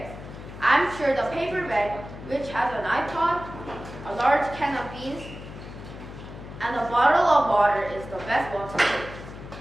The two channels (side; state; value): left; noise; hum, 13 dB below the sound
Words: I'm sure the paper bag, which has an iPod, a large can of beans, and a bottle of water is the best one to take.